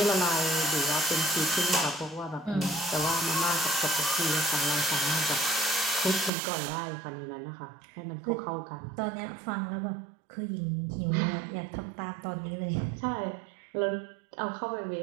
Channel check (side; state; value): left; drops out; at 6.3 s